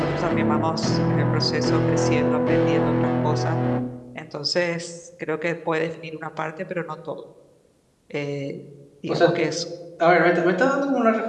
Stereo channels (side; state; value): both; identical; correlation 1.00